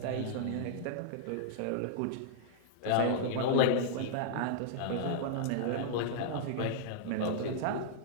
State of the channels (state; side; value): different; both; correlation -0.01